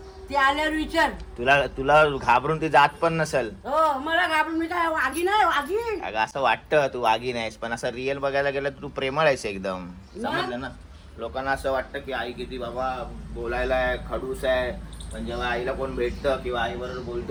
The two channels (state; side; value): identical; both; correlation 1.00